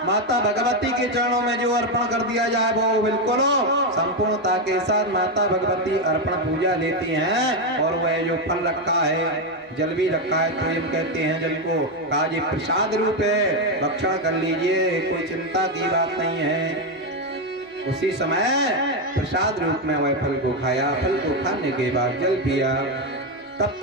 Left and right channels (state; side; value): normal; both; correlation 0.07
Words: माता भगवती के चरणों में जो अर्पण कर दिया जाए वो बिल्कुल संपूर्णता के साथ माता भगवती अर्पण पूजा लेती हैं। और वह जो फल रखा है, जल भी रखा है, तो हम कहते हैं जल को, कहा जी प्रसाद रूप है, भक्षण कर लीजिए, कोई चिंता की बात नहीं है। उसी समय प्रसाद रूप में वह फल को खाया। फल को खाने के बाद जल पिया। तब